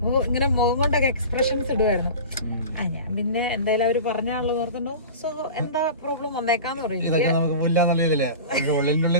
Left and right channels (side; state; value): both; inverted; correlation -0.34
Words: ഇങ്ങനെ മുഖം കൊണ്ടൊക്കെ എക്സ്പ്രഷൻസ് ഇടുമായിരുന്നു. ഞാൻ പിന്നെ എന്തായാലും അവർ പറഞ്ഞാണല്ലോ ഓർക്കണ്ടോ, സോ എന്താ പ്രോബ്ലം വന്നേക്കാന്ന് പറയും.